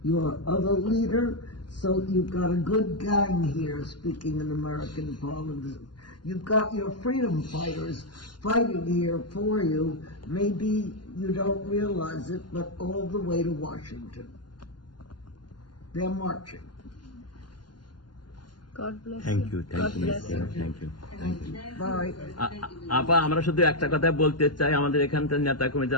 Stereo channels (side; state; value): right; late; 0.71 ms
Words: your other leader. So you've got a good gang here speaking in American Parliament. You've got your freedom fighters fighting here for you. Maybe you don't realize it, but all the way to Washington. They're marching. God bless thank you. You, thank you, thank you. Bye. আপা, আমরা শুধু একটা কথা বলতে চাই, আমাদের এখানকার নেতা কর্মী